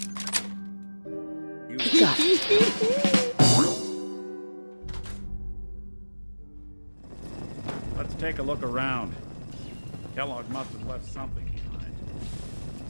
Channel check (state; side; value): inverted; both; correlation -1.00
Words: Got it. Let's take a look around. Kellogg must have left something behind.